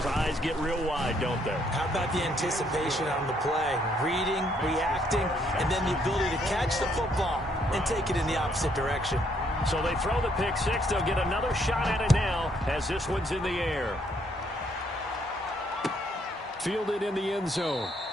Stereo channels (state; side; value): normal; both; correlation 0.70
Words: eyes get real wide, don't they? How about the anticipation on the play? Reading, reacting, and then the ability to catch the football and take it in the opposite direction. So they throw the pick 6. They'll get another shot at it now as this one's in the air. Fielded in the end zone.